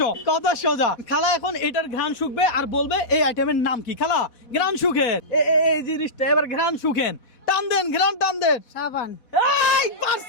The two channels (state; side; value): late; right; 4.1 ms